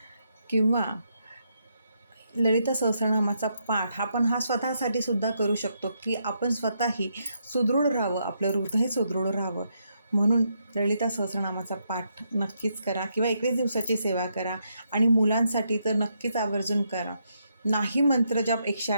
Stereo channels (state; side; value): inverted; both; correlation -0.79